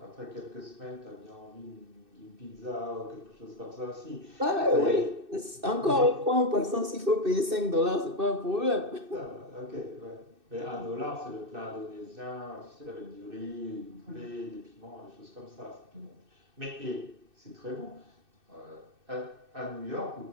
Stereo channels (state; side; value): late; left; 2.6 ms